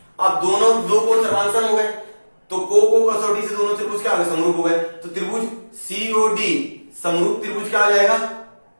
अब दोनों दो कोण सर्वांगसम हो गए, तो को कसौटी से दोनों त्रिभुज क्या हो गए, समरूप हो गए। तो त्रिभुज COD समरूप त्रिभुज क्या आ जाएगा,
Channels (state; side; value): inverted; both; correlation -1.00